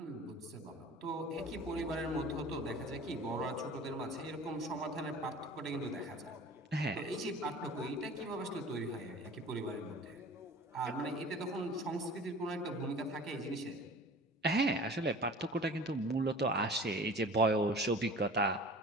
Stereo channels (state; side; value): normal; both; correlation 0.42